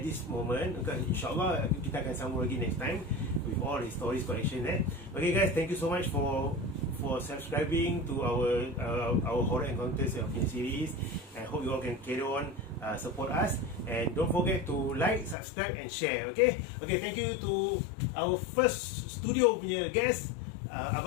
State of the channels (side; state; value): right; drops out; at 15.4 s